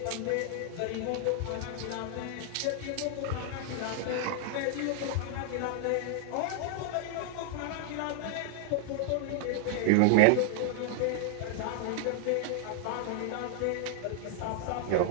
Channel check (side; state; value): both; different; correlation 0.00